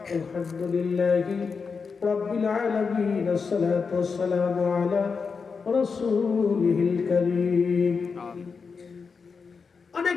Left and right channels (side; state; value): right; quieter; 5.3 dB